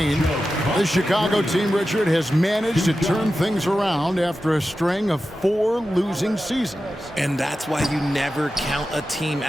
The Chicago team, Richard, has managed to turn things around after a string of 4 losing seasons. And that's why you never count a team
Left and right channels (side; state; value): both; normal; correlation 0.92